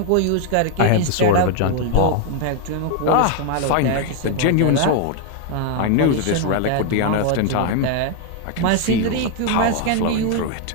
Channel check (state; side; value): different; both; correlation 0.01